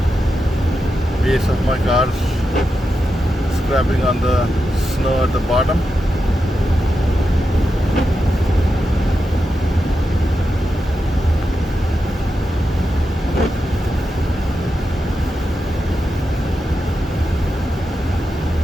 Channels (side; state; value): both; normal; correlation 0.88